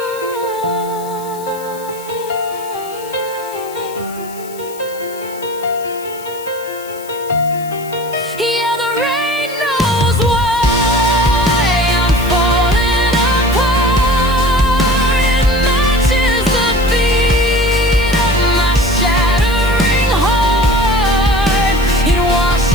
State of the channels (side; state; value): left; noise; hiss, 18 dB below the sound